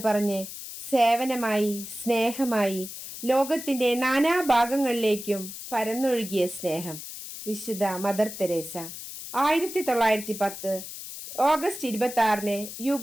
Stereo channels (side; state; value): left; noise; hiss, 10 dB below the sound